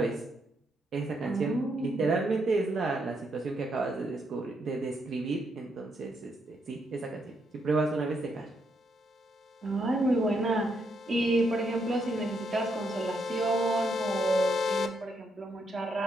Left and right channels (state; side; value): normal; both; correlation 0.77